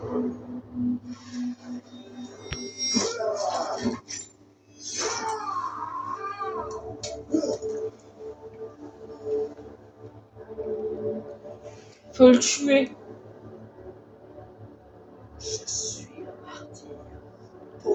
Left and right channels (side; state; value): both; identical; correlation 1.00